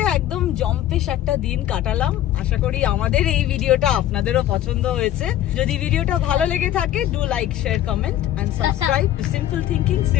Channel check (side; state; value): right; quieter; 12.5 dB